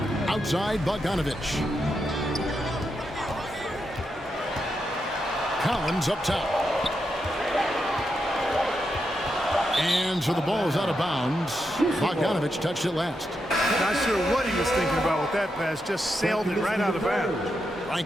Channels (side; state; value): both; normal; correlation 0.84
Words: Outside Bogdanovich. Collins up top. And so the ball is out of bounds. Bogdanovich touched it last. Not sure what he was thinking about with that pass. Just sailed it right out of bounds.